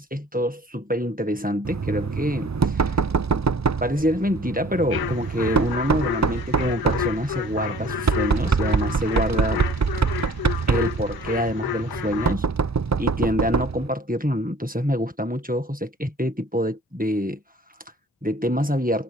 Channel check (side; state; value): both; normal; correlation 0.51